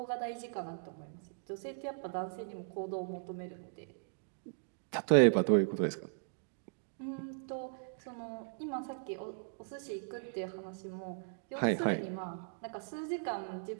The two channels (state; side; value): silent; left; digital silence